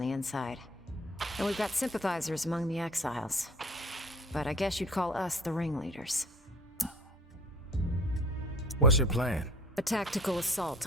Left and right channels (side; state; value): both; normal; correlation 0.48